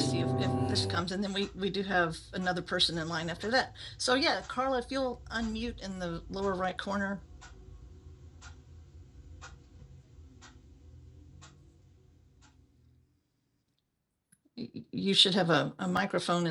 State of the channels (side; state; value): both; identical; correlation 1.00